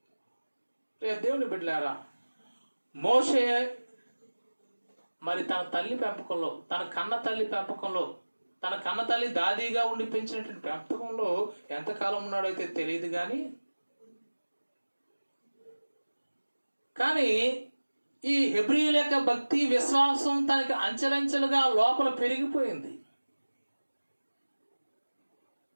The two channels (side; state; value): both; inverted; correlation -1.00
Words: దేవుని బిడ్డలారా, మోషే మరి తన తల్లి పెంపకంలో, తన కన్న తల్లి పెంపకంలో, తన కన్న తల్లి దాదీగా ఉండి పెంచినటువంటి పెంపకంలో ఎంతకాలం ఉన్నాడైతే తెలియదు, కానీ ఈ హెబ్రీయుల యొక్క భక్తి విశ్వాసం తనకి అంచెలంచెలుగా లోపల పెరిగిపోయింది.